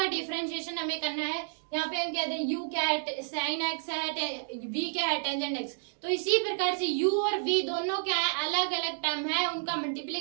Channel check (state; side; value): silent; left; digital silence